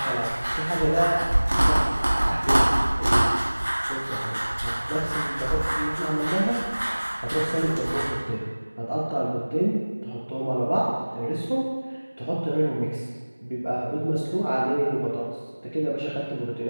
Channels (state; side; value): inverted; both; correlation -1.00